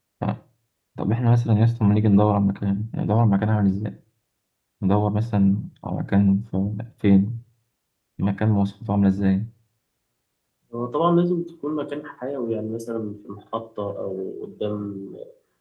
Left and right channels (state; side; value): identical; both; correlation 1.00